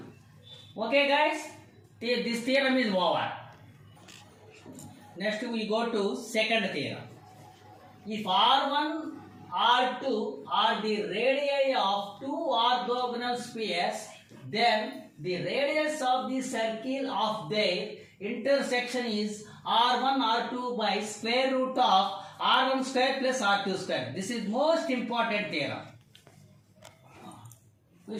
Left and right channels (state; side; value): identical; both; correlation 1.00